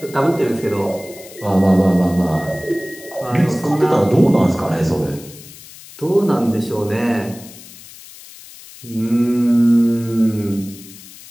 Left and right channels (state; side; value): noise; left; hiss, 19 dB below the sound